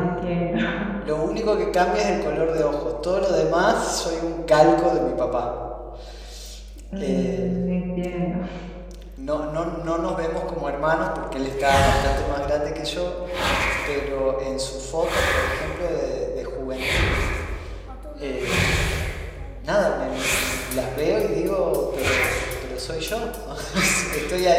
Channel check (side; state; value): both; identical; correlation 1.00